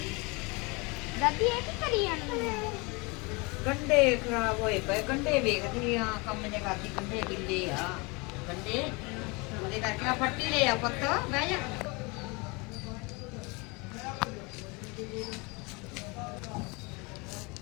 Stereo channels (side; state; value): right; quieter; 27.9 dB